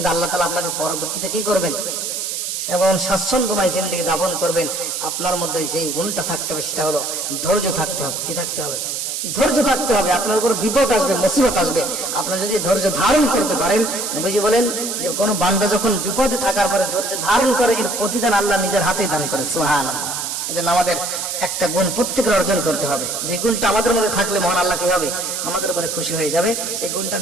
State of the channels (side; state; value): right; noise; hiss, 3 dB below the sound